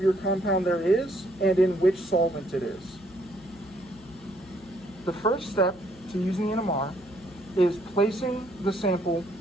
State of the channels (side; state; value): left; noise; hum, 25 dB below the sound